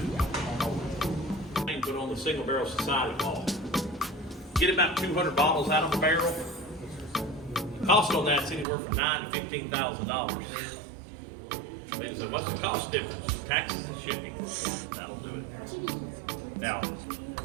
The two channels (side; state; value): left; drops out; at 8.7 s